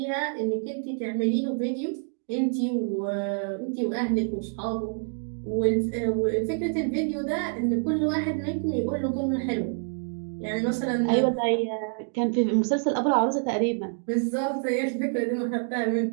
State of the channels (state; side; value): silent; left; 60 dB below the other